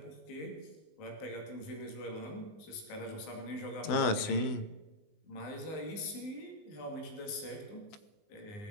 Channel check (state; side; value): late; right; 19 ms